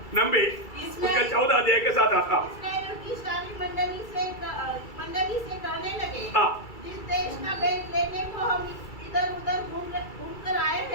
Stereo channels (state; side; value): late; right; 2.3 ms